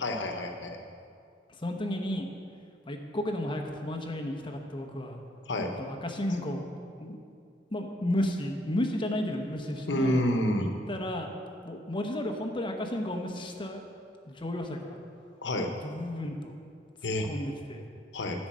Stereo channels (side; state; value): both; normal; correlation 0.67